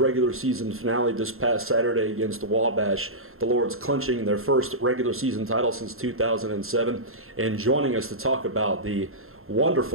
season finale this past Saturday against the Wabash. The Lords clinching their first regular season title since 2007. And joining us to talk about the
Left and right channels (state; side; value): late; left; 0.61 ms